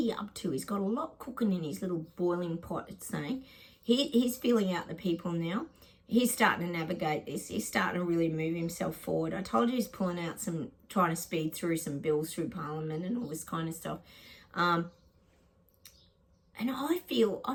up to? He's got a lot cooking in his little boiling pot, it's saying. He's feeling out the people now. He's starting to navigate this. He's starting to really move himself forward. I told you he's pulling out trying to speed through some bills through Parliament and all this kind of stuff. And I feel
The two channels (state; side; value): identical; both; correlation 1.00